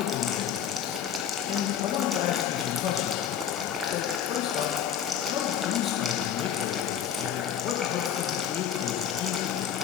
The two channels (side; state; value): right; quieter; 9.1 dB